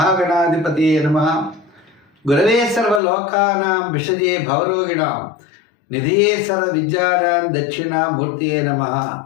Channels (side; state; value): right; drops out; at 3.0 s